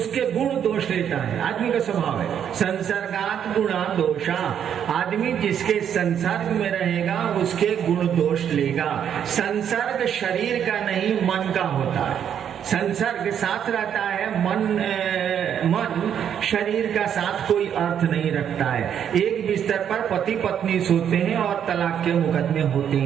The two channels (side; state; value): left; quieter; 8.9 dB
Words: गुण दोष लेता है। आदमी का स्वभाव है संसर्गात गुणा दोषा। आदमी जिसके संसर्ग में रहेगा उसके गुण दोष लेगा। संसर्ग शरीर का नहीं, मन का होता है। संसर्ग साथ रहता है, मन शरीर का साथ कोई अर्थ नहीं रखता है। एक बिस्तर पर पति पत्नी सोते हैं और तलाक के मुकदमे होते